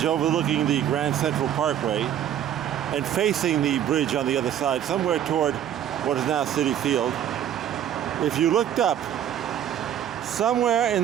overlooking the Grand Central Parkway and facing the bridge on the other side, somewhere toward what is now Citi Field, if you looked up, somewhere in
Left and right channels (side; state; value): left; quieter; 10.4 dB